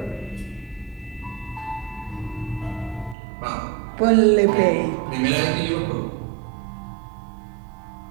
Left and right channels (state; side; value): drops out; left; at 3.2 s